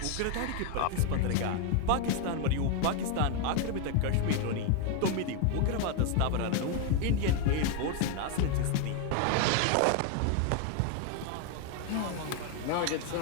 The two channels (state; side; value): different; both; correlation 0.01